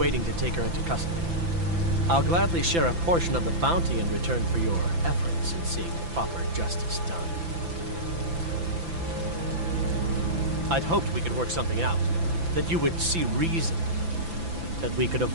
to take her into custody. I'll gladly share a portion of the bounty in return for your efforts in seeing proper justice done. I'd hoped we could work something out, that you would see reason, that we could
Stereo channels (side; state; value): left; late; 5.9 ms